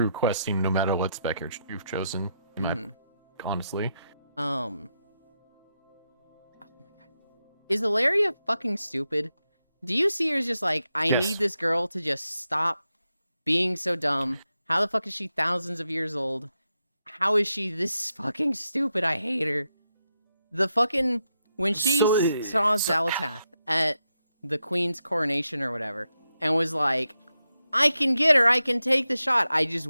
questing no matter what spec you've chosen. Honestly. Oh my god. Is Ilaria fucking stupid? Do you see her as just like, I Yes. need this girl to just stop being so dumb? How the fuck is she thousands of years old? How is she this fucking stupid? I hate her. The fucking... When she saw Xalatath at the Queen's coronation or whatever, and was like, I can get her, I can take the shot. I just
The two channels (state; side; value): inverted; both; correlation -0.86